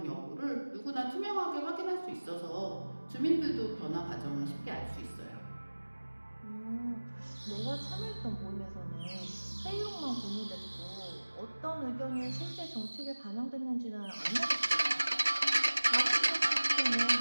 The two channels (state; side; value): inverted; both; correlation -1.00